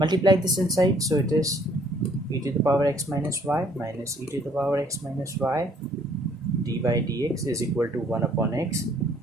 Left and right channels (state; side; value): normal; both; correlation 0.61